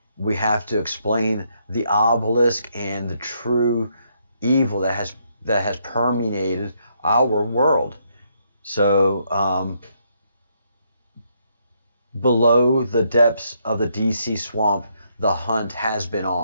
We have to explain the obelisk and the true evil that has permeated our world. So below the depths of the DC swamp, the hunt has been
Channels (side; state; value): both; inverted; correlation -0.75